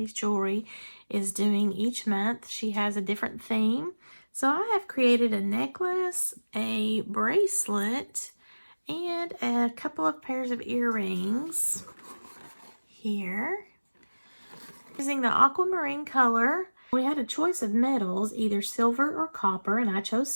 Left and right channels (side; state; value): both; inverted; correlation -1.00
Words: Jewelry is doing each month. She has a different theme. So I have created a necklace, a bracelet, and a couple of pairs of earrings here. Using the aquamarine color, we had a choice of metals, either silver or copper, and I chose